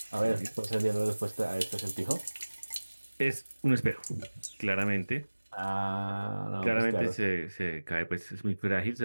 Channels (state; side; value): inverted; both; correlation -1.00